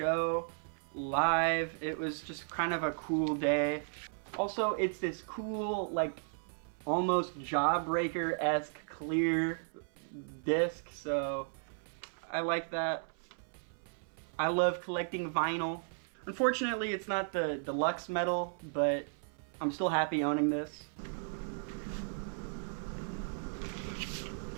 live. It was just kind of a cool day. Also, it's this cool, like, almost Jawbreaker-esque clear disc, so I like that. I love collecting vinyl. Unfortunately, it's not the deluxe metal, but I'm still happy owning this.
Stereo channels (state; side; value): silent; left; 54 dB below the other